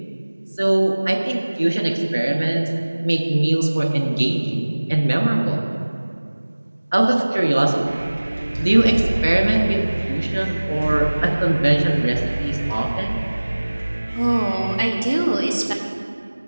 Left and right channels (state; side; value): inverted; both; correlation -1.00